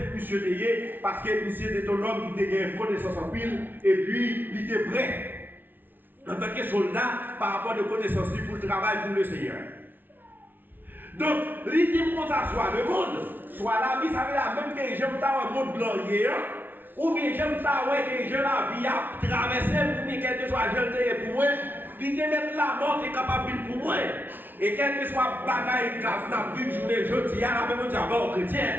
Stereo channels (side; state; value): left; late; 0.091 ms